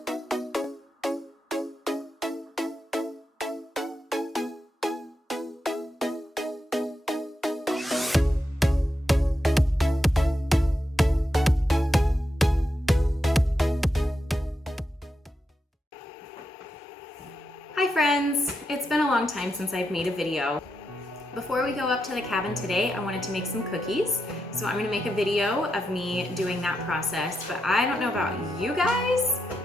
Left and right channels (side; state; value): both; normal; correlation 0.85